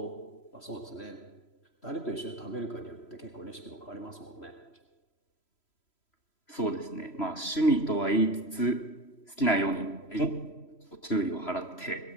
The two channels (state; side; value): late; right; 3.0 ms